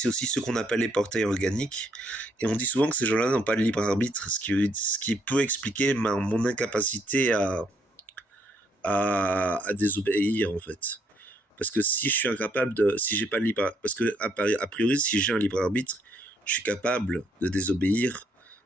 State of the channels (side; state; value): both; normal; correlation 0.71